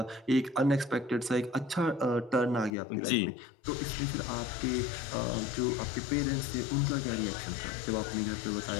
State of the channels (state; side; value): drops out; right; at 2.7 s